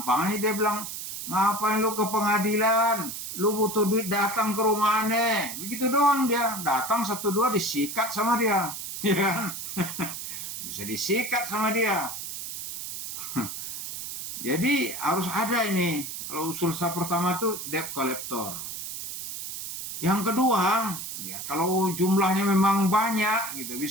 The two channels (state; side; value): noise; right; hiss, 7 dB below the sound